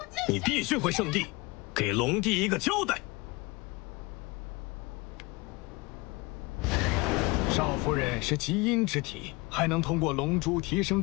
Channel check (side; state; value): right; quieter; 25.0 dB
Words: 你必须回圣地，给龙帝一个交代。少夫人是极阴之体，还能通过龙珠提升